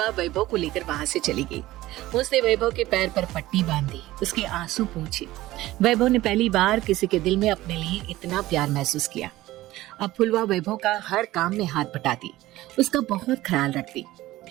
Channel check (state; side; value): quieter; left; 16.8 dB